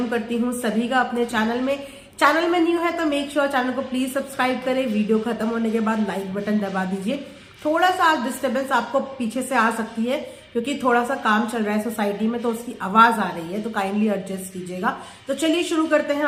करती हूं सभी का अपने चैनल में न्यू है तो मेक श्योर चैनल को प्लीज सब्सक्राइब करें। वीडियो खत्म होने के बाद लाइक बटन दबा दीजिए। थोड़ा सा डिस्टर्बेंस आपको पीछे से आ सकती है क्योंकि थोड़ा सा काम चल रहा है सोसाइटी में, तो उसकी आवाज आ रही है, तो काइंडली एडजस्ट कीजिएगा। तो चलिए शुरू करते हैं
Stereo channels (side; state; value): both; identical; correlation 1.00